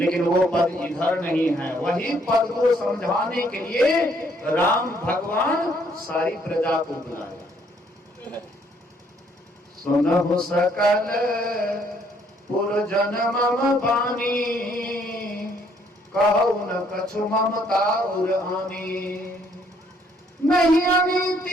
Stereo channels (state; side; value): normal; both; correlation 0.67